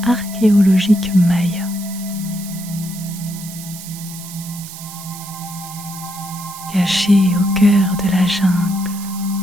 archéologique maya. Caché au cœur de la jungle.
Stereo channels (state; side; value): noise; right; hiss, 13 dB below the sound